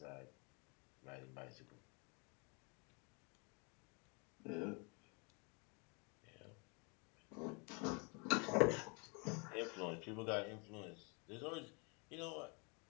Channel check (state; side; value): quieter; right; 32.7 dB